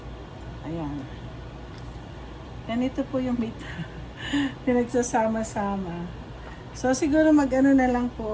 Ayan. Ganito po yung meat. Pinagsasama-sama. So, siguro mag-ano na lang po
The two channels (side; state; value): both; identical; correlation 1.00